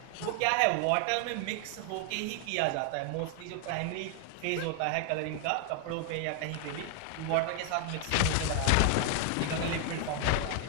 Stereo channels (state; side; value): different; both; correlation 0.00